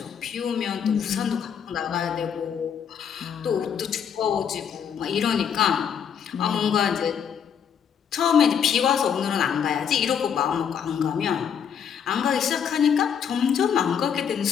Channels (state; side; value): quieter; right; 7.8 dB